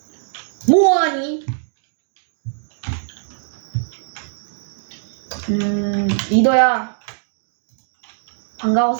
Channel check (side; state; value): left; silent; digital silence